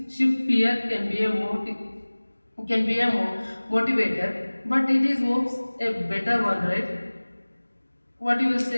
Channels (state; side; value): inverted; both; correlation -1.00